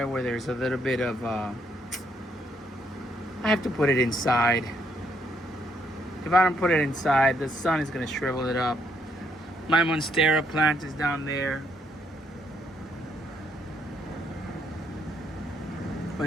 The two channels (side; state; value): both; normal; correlation 0.72